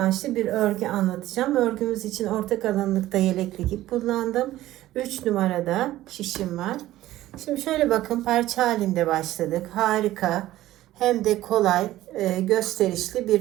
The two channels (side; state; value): left; quieter; 15.1 dB